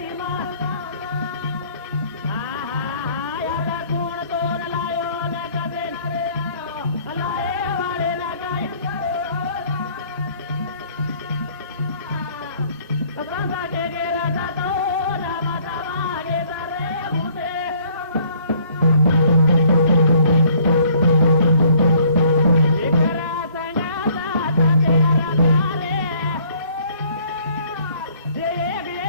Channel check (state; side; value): inverted; both; correlation -0.60